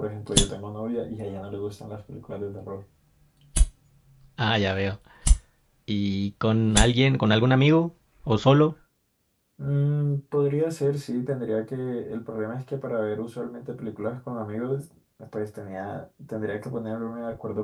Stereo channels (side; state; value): both; identical; correlation 1.00